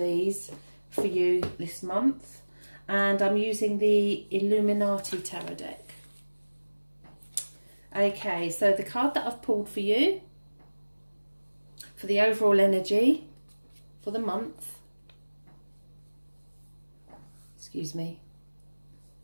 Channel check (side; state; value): both; inverted; correlation -1.00